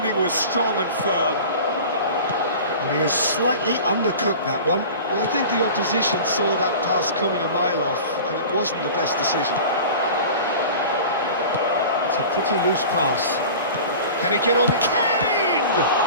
was strong and firm. And he has slightly undercooked that one. Well, I think the opposition saw that pass coming a mile off, and it wasn't the best decision. It's a pretty loose pass. Can he get on? Kane!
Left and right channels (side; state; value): both; inverted; correlation -0.37